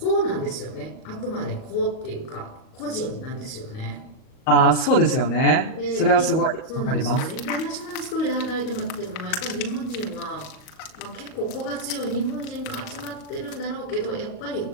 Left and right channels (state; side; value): late; right; 38 ms